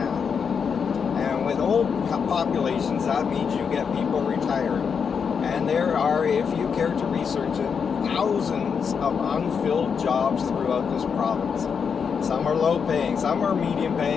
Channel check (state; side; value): quieter; right; 6.4 dB